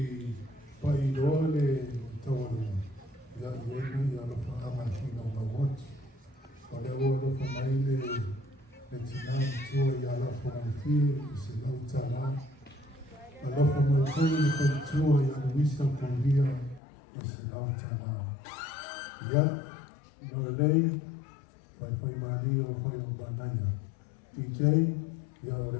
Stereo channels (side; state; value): right; drops out; at 16.8 s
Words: paidole tawala ya yenu ya lafa amashina mawot wale wale famaile etinam tuwa ya lafa alfir isilau tala alafu mwekoni kwa ya luisa kumbia isilau tala ya Noelei Fai Maria Fai Banaya DJ ya